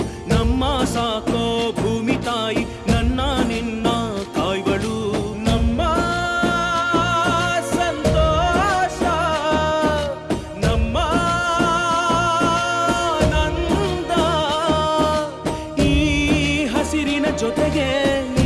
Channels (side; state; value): both; identical; correlation 1.00